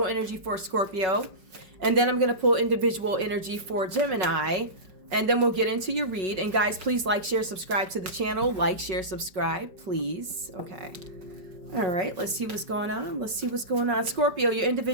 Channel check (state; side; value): late; left; 5.4 ms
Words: energy for Scorpio, and then I'm going to pull individual energy for Gemini. And then we'll get into your read. And guys, please like, share, subscribe to the channel. Like, share, subscribe, please. Okay. All right. Let's see what's going on. Let's see what's going on. Scorpio, your